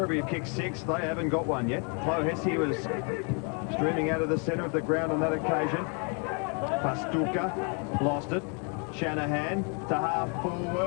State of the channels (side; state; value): right; quieter; 37.3 dB